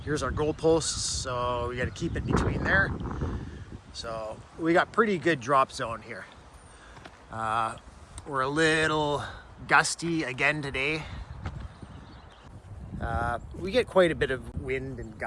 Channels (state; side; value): identical; both; correlation 1.00